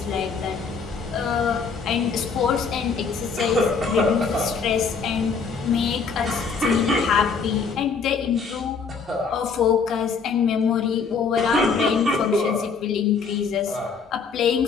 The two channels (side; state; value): right; quieter; 5.3 dB